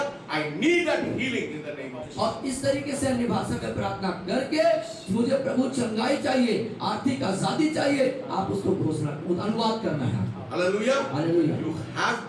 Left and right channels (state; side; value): identical; both; correlation 1.00